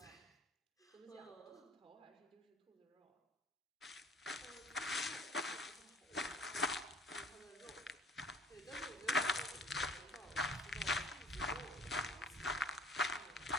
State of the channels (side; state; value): both; normal; correlation 0.50